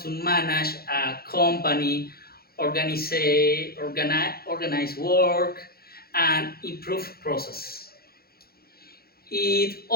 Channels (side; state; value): right; late; 0.44 ms